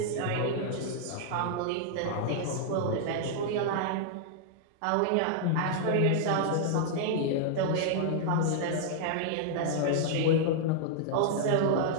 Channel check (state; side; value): different; both; correlation -0.01